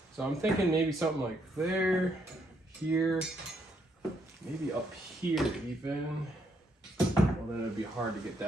So I'm thinking maybe something like there, here, maybe up here even. Well, then it'd be hard to get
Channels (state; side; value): normal; both; correlation 0.74